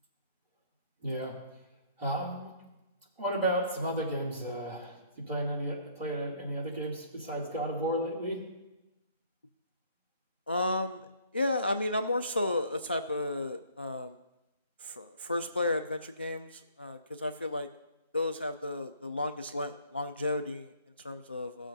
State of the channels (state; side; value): inverted; both; correlation -0.59